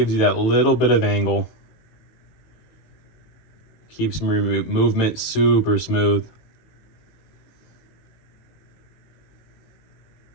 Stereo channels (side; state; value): right; late; 18 ms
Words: you that little bit of angle. Keeps movement super smooth.